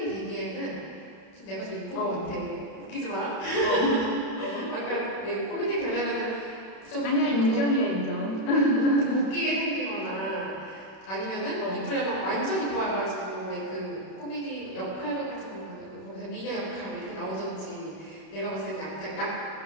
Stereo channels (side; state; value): right; late; 31 ms